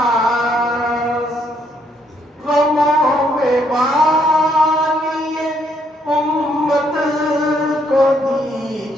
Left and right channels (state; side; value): normal; both; correlation 0.71